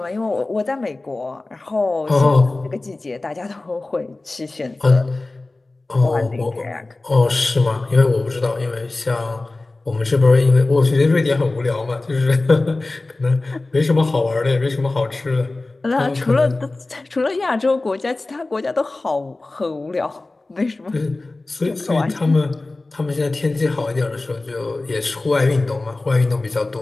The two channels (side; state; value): right; quieter; 3.1 dB